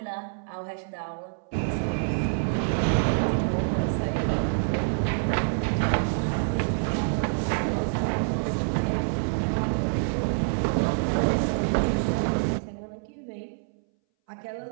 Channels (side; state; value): left; silent; 60 dB below the other